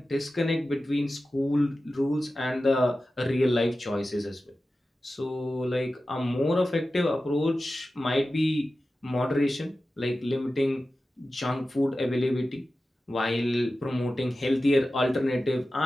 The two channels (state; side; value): normal; both; correlation 0.94